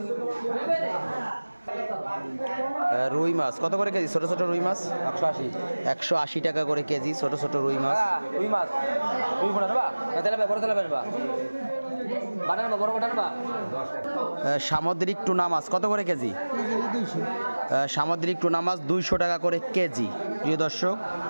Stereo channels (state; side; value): inverted; both; correlation -1.00